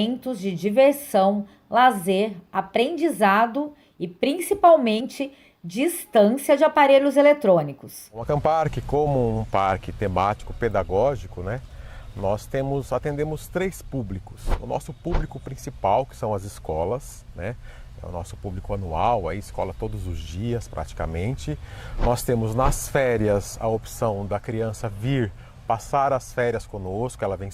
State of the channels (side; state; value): both; identical; correlation 1.00